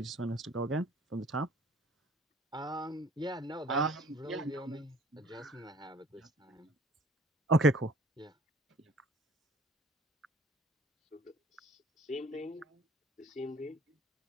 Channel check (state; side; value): normal; both; correlation 0.53